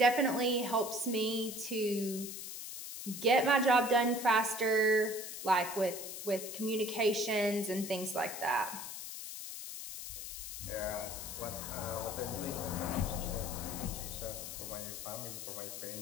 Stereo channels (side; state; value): left; noise; hiss, 8 dB below the sound